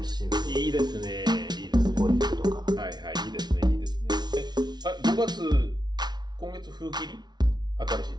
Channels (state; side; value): late; left; 0.20 ms